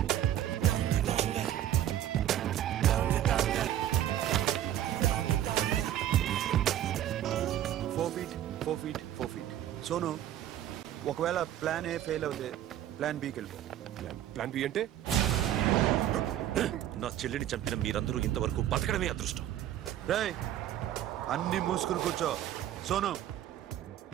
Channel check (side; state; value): left; quieter; 11.8 dB